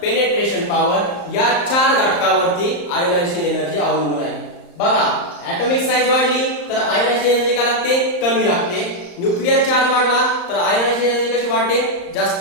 पेनिट्रेशन पॉवर या 4 घटकावरती आयोनायझेशन एनर्जी अवलंबून आहे. बघा ऍटॉमिक साइज वाढली तर आयोनायझेशन एनर्जी काय लागते कमी लागते. न्यूक्लिअर चार्ज वाढला तर आयोनायझेशन एनर्जी कशी वाढते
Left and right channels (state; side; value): late; right; 34 ms